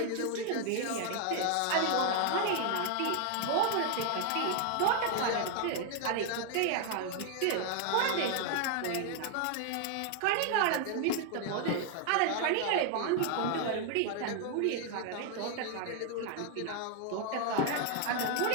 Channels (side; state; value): both; different; correlation 0.00